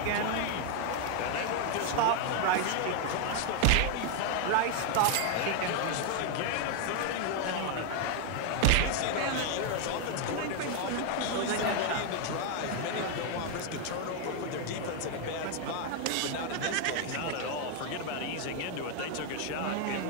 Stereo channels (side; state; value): both; different; correlation 0.00